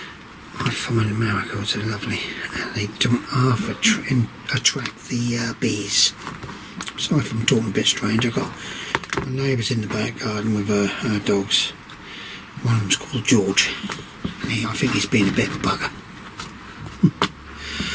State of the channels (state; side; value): identical; both; correlation 1.00